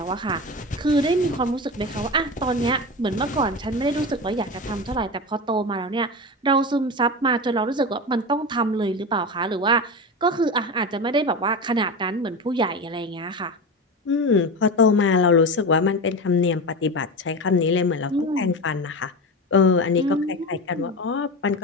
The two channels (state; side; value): normal; both; correlation 0.23